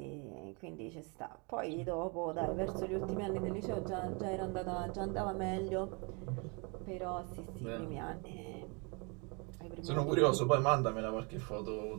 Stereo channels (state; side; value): quieter; left; 31.9 dB